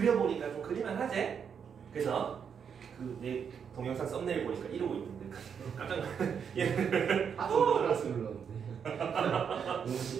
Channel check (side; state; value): left; quieter; 7.2 dB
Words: 좀 그릴만 하지? 그래서 그 내 동영상 썸네일 보니까 이러고 있는데 깜짝 놀랐네. 알았어 눌렀는데 너무